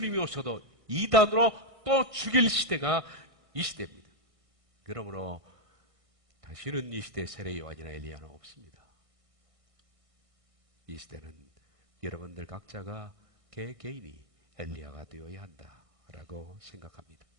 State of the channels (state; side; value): late; left; 1.6 ms